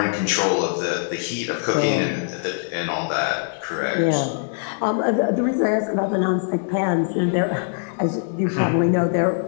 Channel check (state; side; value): silent; right; digital silence